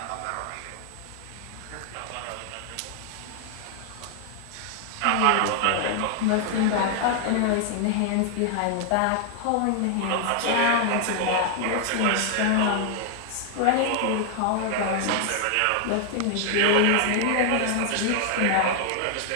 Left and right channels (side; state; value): both; different; correlation 0.00